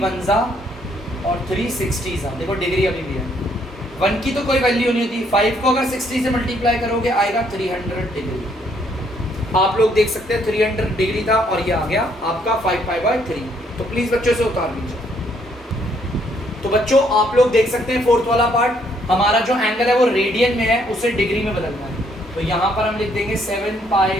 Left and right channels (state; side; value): normal; both; correlation 0.69